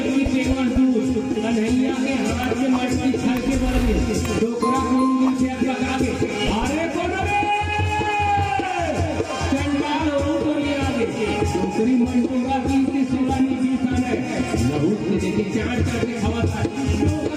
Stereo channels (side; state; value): both; identical; correlation 1.00